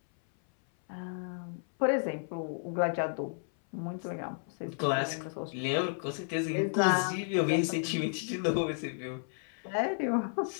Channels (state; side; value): silent; right; 56 dB below the other